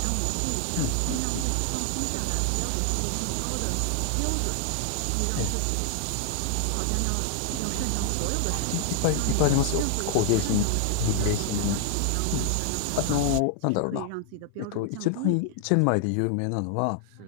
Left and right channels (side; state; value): both; different; correlation 0.00